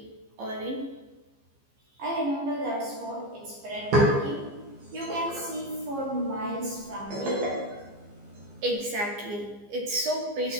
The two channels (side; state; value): left; late; 15 ms